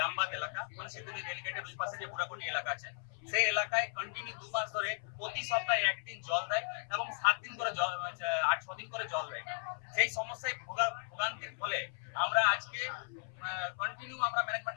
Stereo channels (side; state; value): right; silent; 54 dB below the other